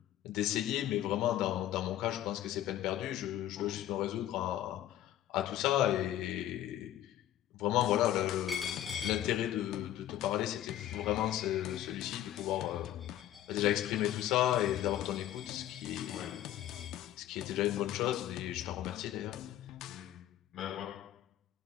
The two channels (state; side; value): quieter; right; 12.6 dB